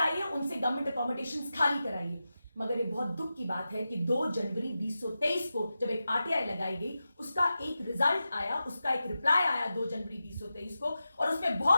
उनसे गवर्नमेंट अकोमोडेशंस खाली कराइए। मगर ये बहुत दुख की बात है कि 2 जनवरी 2023 को जब एक आरटीआई लगाई गई, उसका एक रिजल्ट आया, उसका एक रिप्लाई आया 2 जनवरी 2023 को, और उसमें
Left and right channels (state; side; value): inverted; both; correlation -0.92